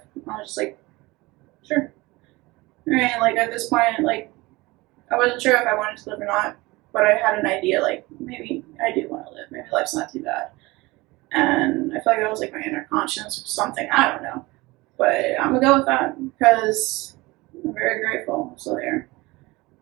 And I was just like, sure. And like at this point, like I wasn't sure if I wanted to live or not, but I had an idea, like maybe I do want to live. Maybe life's not too bad. And I feel like that was like my inner conscience or something. I don't know. But I'm going to go with that because I'm very grateful I'm still here.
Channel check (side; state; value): left; quieter; 21.9 dB